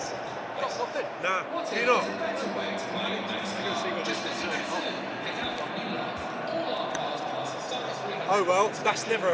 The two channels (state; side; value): identical; both; correlation 1.00